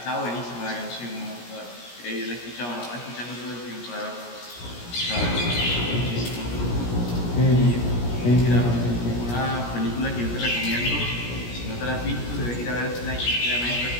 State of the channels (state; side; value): late; right; 17 ms